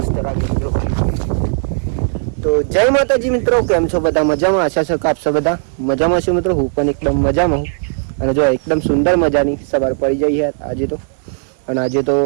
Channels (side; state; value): left; silent; digital silence